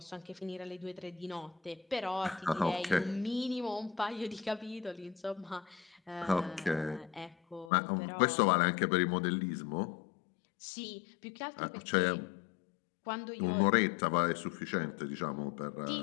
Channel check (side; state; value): right; drops out; at 7.7 s